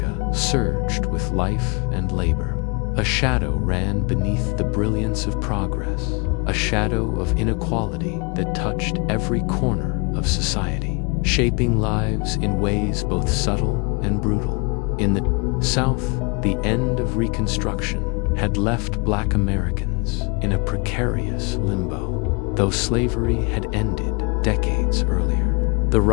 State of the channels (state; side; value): quieter; right; 31.3 dB